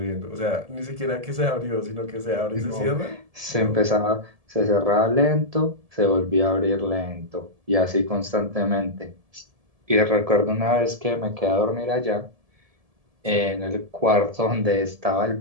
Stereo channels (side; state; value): left; late; 1.7 ms